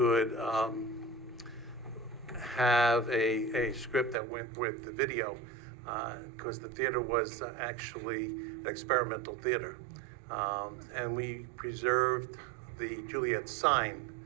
have a script that went with the video, because the theater was actually an experimental theater. And we preserved the Juliet sign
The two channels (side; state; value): left; drops out; at 4.2 s